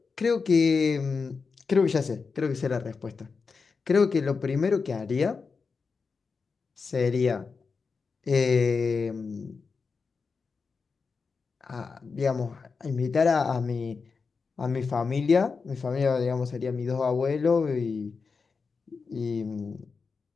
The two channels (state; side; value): quieter; right; 4.9 dB